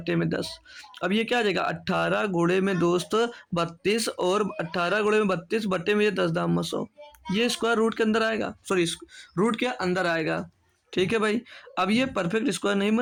में 10। अब ये क्या आ जाएगा? 18 गुणे में दोस्त 32 और 18 गुणे में 32 भट्टे में ये 10 दाम 100। ये स्क्वायर रूट के अंदर आएगा, सॉरी रूट के अंदर आएगा, ठीक है भाई। अब ये परफेक्ट स्क्वायर नहीं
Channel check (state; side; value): identical; both; correlation 1.00